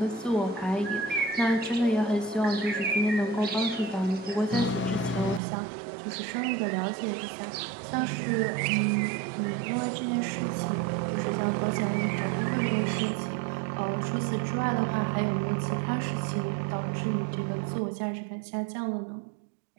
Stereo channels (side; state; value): left; drops out; at 5.4 s